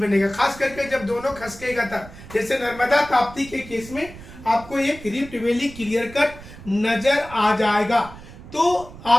खास करके जब दोनों खसकेगा तब, जैसे नर्मदा ताप्ती के केस में आपको एक रिफ्ट वैली क्लियर कट नजर आ जाएगा। तो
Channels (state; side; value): noise; right; rumble, 17 dB below the sound